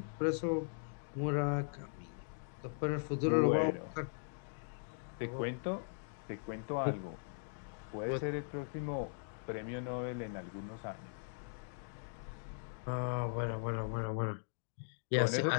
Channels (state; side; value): silent; right; digital silence